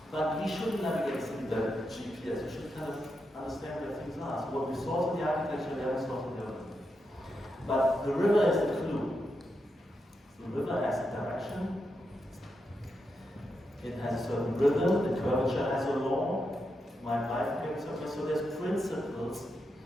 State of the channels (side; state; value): both; normal; correlation 0.85